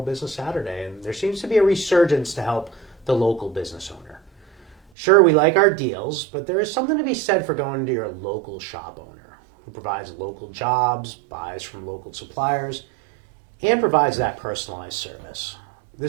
Business Saturday, and there seems to be a resurgence to help the local business owner. Sure, we like our deals, but there is something to be said for going to your local shop owner who provides local jobs, buys from local suppliers, and provides that personalized service.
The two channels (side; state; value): left; drops out; at 4.8 s